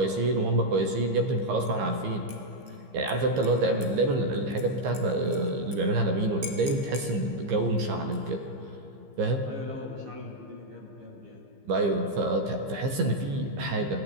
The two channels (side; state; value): left; late; 15 ms